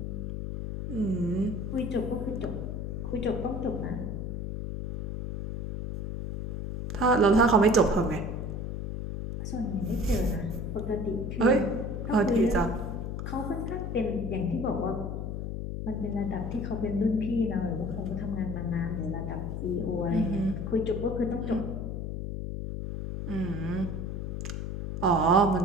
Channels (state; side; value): noise; left; hum, 4 dB below the sound